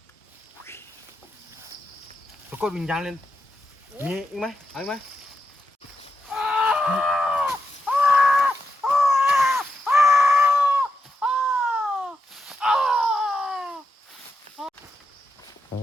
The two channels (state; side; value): normal; both; correlation 0.86